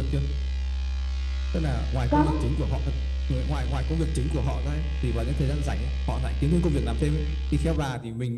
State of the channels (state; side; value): identical; both; correlation 1.00